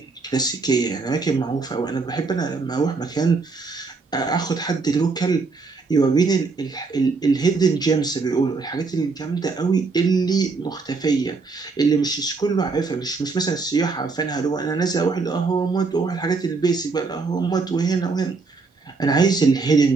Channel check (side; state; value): left; quieter; 4.2 dB